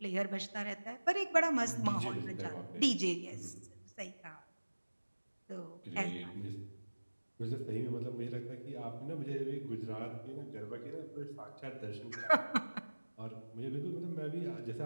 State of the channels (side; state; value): both; inverted; correlation -1.00